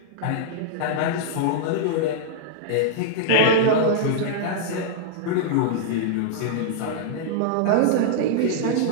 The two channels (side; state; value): both; different; correlation -0.01